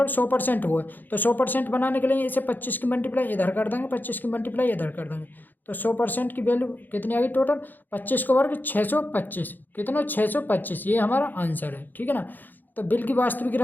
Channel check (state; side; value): late; right; 0.087 ms